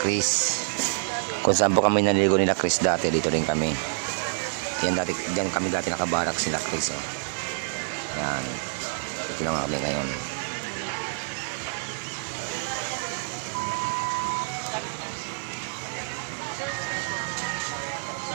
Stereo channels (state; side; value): silent; left; 60 dB below the other